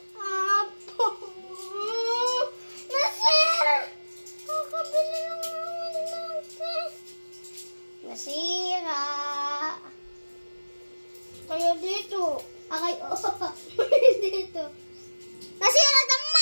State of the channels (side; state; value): both; inverted; correlation -1.00